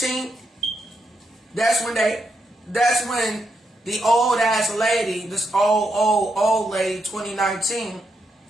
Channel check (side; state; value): both; normal; correlation 0.81